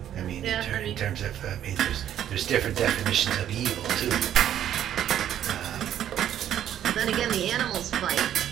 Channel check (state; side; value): quieter; left; 10.7 dB